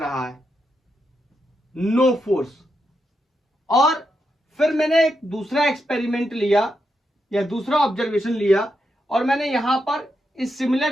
है, नो फोर्स। और फिर मैंने एक दूसरा एक्सपेरिमेंट लिया या दूसरा ऑब्जर्वेशन लिया और मैंने यहां पर इस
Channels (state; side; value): normal; both; correlation 0.84